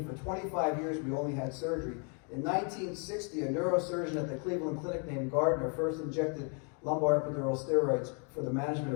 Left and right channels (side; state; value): right; quieter; 38.2 dB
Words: for 25 years we only had surgery. In 1960, a neurosurgeon at the Cleveland Clinic named Gardner first injected lumbar epidural steroids for the management